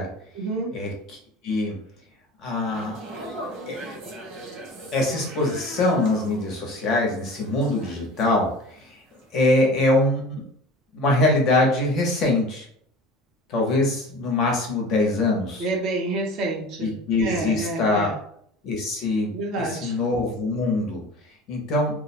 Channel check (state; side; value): normal; both; correlation 0.39